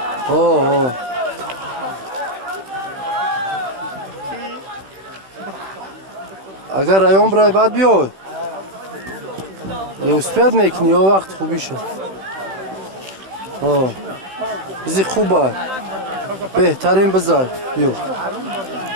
اوه. اگر رایون برای بعد بیای. اسپید میکنی و وقت خوبیشه. اوه. بزی خوبه. بهترین بذار. بیو.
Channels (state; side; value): late; left; 15 ms